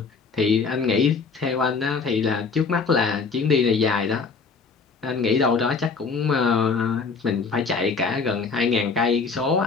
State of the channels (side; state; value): right; quieter; 4.9 dB